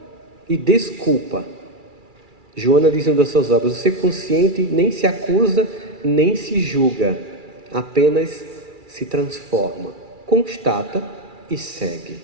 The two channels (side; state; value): left; late; 2.3 ms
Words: e desculpa. Joana diz em uma das suas obras: o ser consciente nem se acusa, nem se julga. Apenas se transforma. Constata e segue.